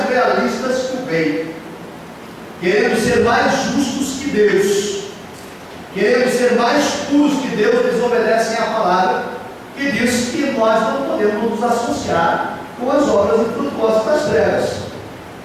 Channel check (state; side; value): identical; both; correlation 1.00